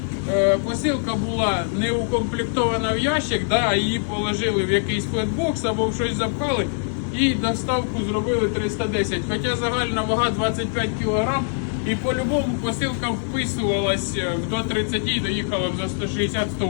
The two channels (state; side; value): silent; right; digital silence